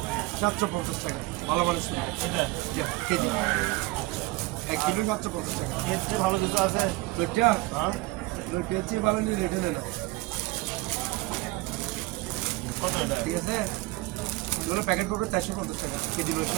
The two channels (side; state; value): left; quieter; 21.0 dB